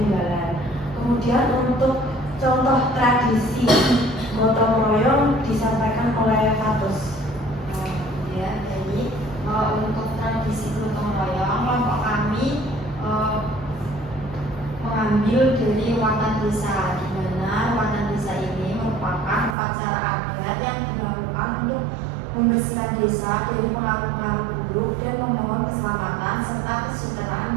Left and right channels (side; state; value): left; drops out; at 19.6 s